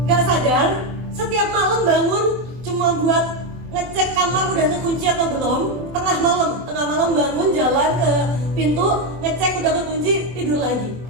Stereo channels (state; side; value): late; left; 24 ms